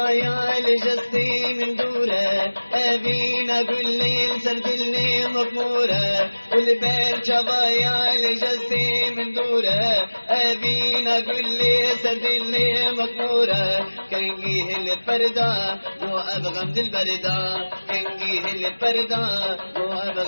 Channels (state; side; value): inverted; both; correlation -1.00